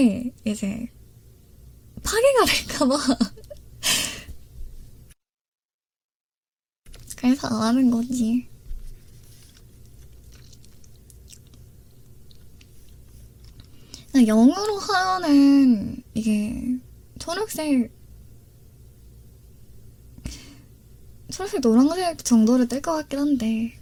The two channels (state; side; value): identical; both; correlation 1.00